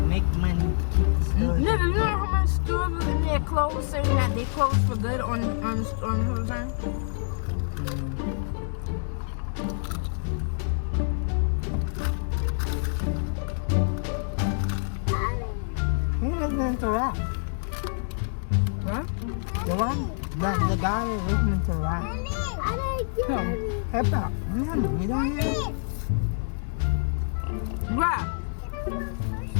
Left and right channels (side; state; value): right; silent; digital silence